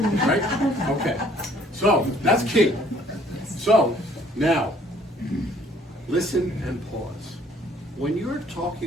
about." Right? Okay. So, that's key. So, now, listen and pause. When you're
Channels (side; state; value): both; normal; correlation 0.60